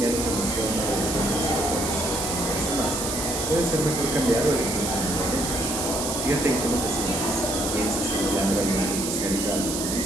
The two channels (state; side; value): noise; right; hiss, 3 dB below the sound